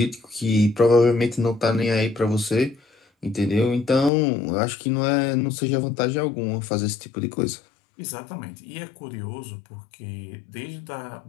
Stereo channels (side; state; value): right; drops out; at 4.1 s